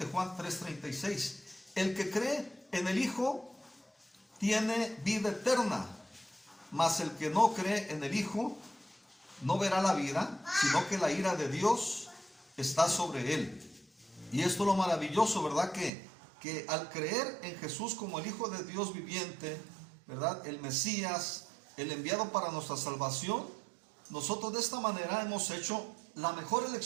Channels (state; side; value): drops out; left; at 15.9 s